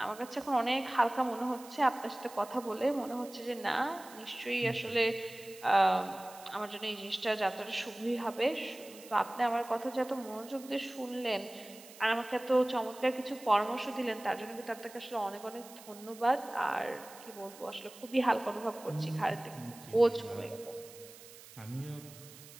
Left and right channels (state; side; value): noise; right; hiss, 18 dB below the sound